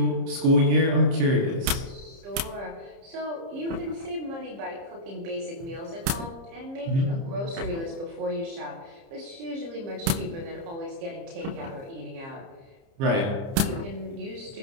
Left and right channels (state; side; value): late; left; 30 ms